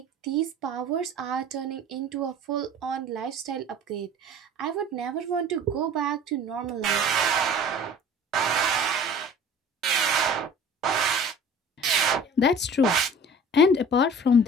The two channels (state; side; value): normal; both; correlation 0.45